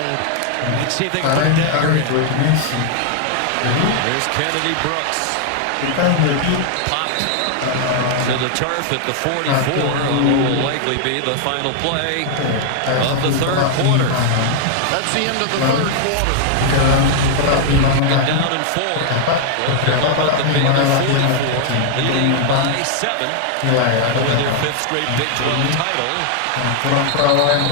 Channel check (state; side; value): different; both; correlation 0.00